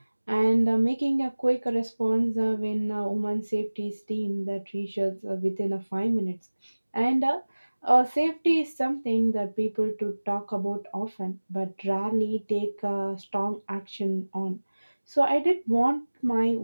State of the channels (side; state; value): both; inverted; correlation -1.00